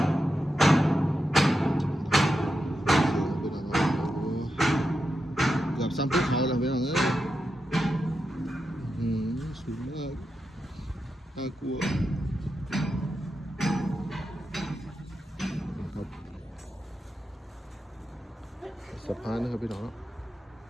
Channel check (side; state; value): both; normal; correlation 0.88